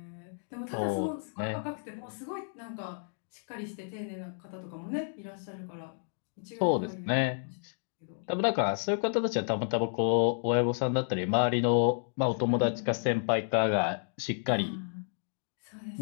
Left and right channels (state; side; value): silent; right; digital silence